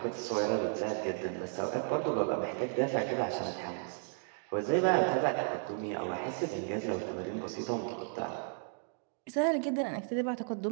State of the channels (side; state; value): left; silent; 55 dB below the other